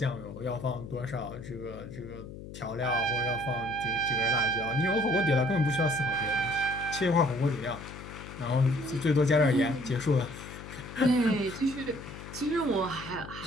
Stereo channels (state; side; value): noise; left; hum, 12 dB below the sound